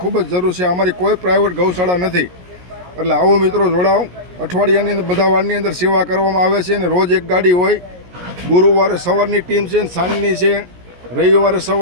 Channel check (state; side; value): late; left; 17 ms